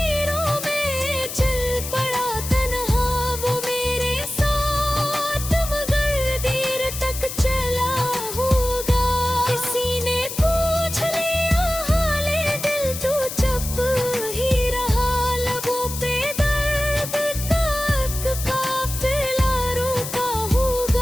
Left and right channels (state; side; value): noise; left; hiss, 7 dB below the sound